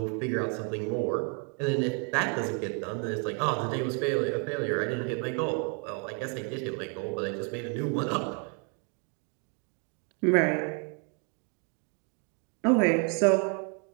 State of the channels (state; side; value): quieter; left; 38.1 dB